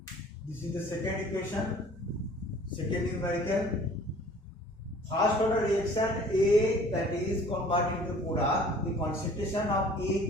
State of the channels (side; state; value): both; normal; correlation 0.51